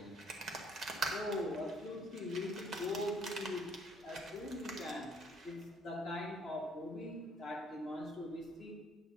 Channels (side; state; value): both; normal; correlation 0.63